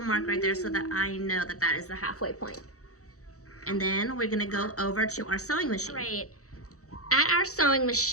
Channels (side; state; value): right; late; 0.65 ms